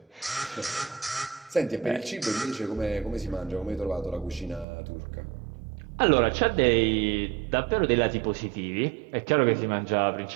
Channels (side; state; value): left; drops out; at 4.7 s